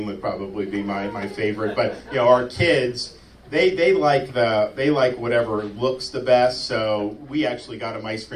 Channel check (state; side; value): identical; both; correlation 1.00